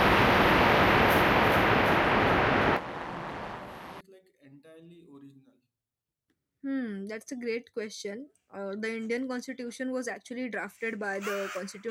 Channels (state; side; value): identical; both; correlation 1.00